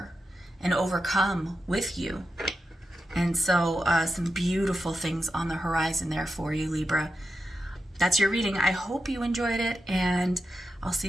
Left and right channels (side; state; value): both; normal; correlation 0.89